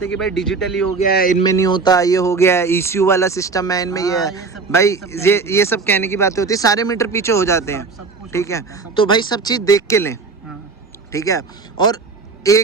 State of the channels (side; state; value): left; quieter; 4.4 dB